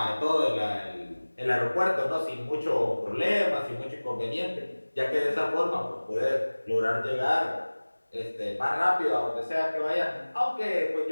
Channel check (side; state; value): both; inverted; correlation -1.00